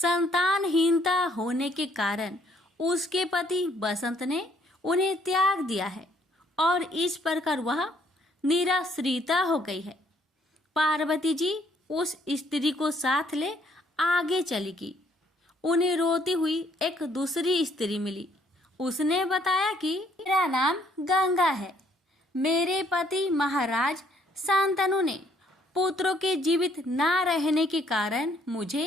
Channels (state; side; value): normal; both; correlation 0.66